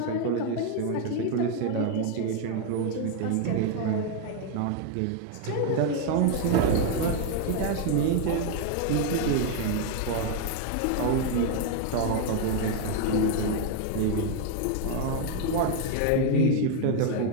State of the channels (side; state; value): both; different; correlation 0.00